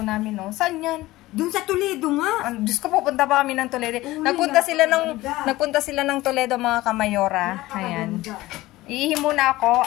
namin, no? Saan yan? Doon sa Toledo nga. Diyos ko, pupunta pa kami ng Toledo. Nagpunta sila ng Toledo, mga kamayora. Ayan. Iihi muna ako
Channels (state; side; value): quieter; right; 18.1 dB